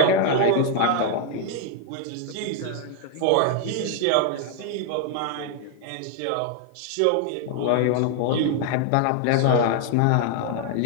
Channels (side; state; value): both; different; correlation 0.00